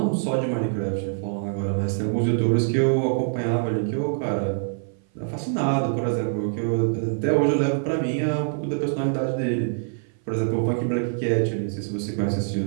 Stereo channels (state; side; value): silent; left; 58 dB below the other